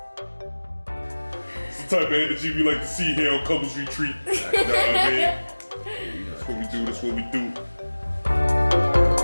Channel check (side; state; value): both; inverted; correlation -1.00